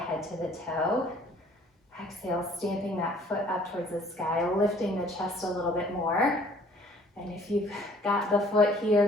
head to the toe. Exhale, stamping that foot up towards the sky, lifting the chest a little bit more. And if you've got the foot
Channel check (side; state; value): both; normal; correlation 0.57